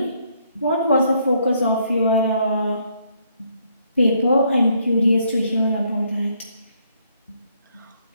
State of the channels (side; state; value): both; inverted; correlation -0.70